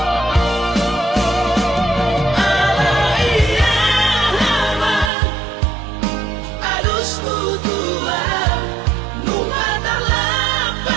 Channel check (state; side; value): drops out; left; at 5.1 s